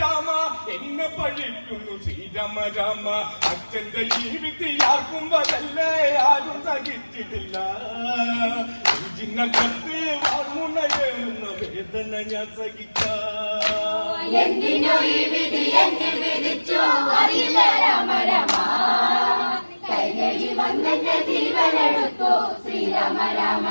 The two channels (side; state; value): both; inverted; correlation -1.00